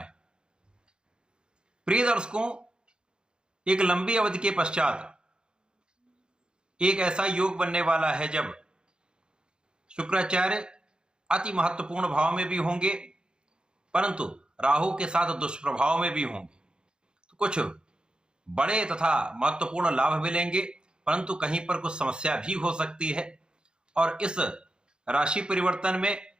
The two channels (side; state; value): left; late; 0.049 ms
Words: हैं। प्रिय दर्शकों, एक लंबी अवधि के पश्चात एक ऐसा योग बनने वाला है जब शुक्राचार्य अति महत्वपूर्ण भाव में भी होंगे, परंतु राहु के साथ दुष्प्रभाव में भी होंगे। तो कुछ बड़े तथा महत्वपूर्ण लाभ मिलेंगे, परंतु कहीं पर कुछ समस्या भी हो सकती है। और इस राशि परिवर्तन में